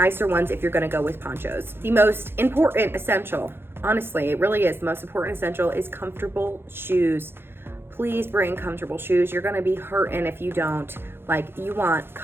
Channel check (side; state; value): left; late; 0.11 ms